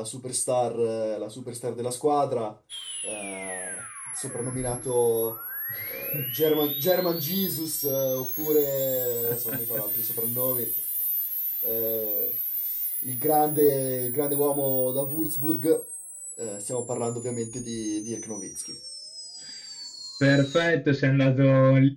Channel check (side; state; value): both; identical; correlation 1.00